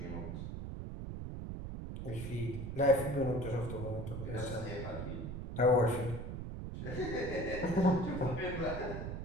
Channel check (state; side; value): noise; right; rumble, 6 dB below the sound